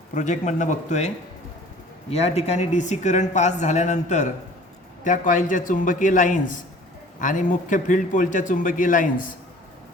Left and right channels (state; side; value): normal; both; correlation 0.48